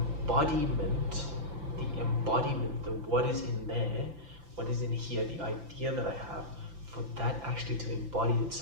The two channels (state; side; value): late; left; 5.9 ms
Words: the what is in there, what is in here, the idea that I have, for that actually to embody